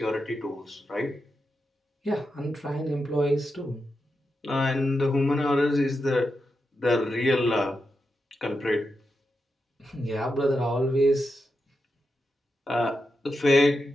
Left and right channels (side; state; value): both; normal; correlation 0.88